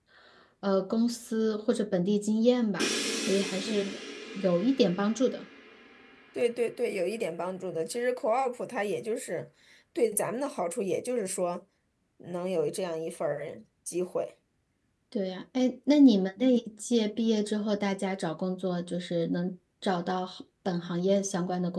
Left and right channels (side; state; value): both; identical; correlation 1.00